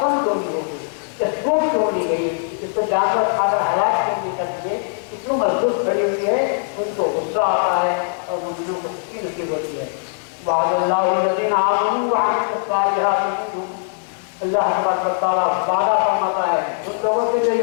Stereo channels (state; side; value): silent; right; digital silence